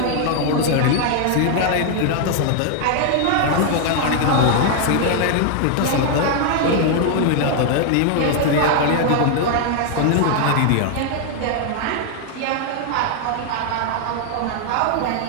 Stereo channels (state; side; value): different; both; correlation 0.00